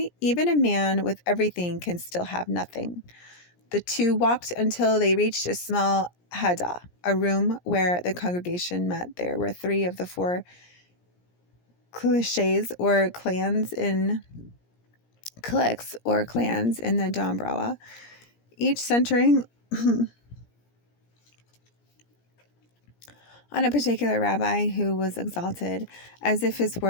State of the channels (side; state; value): right; late; 17 ms